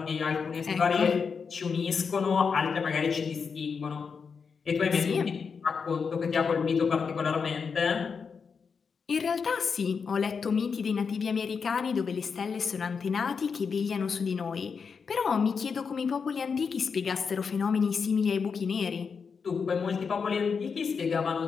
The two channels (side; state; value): right; quieter; 5.7 dB